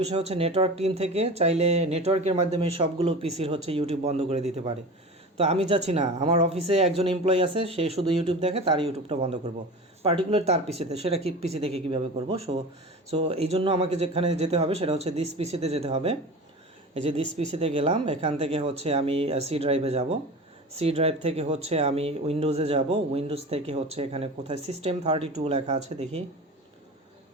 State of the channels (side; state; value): both; normal; correlation 0.33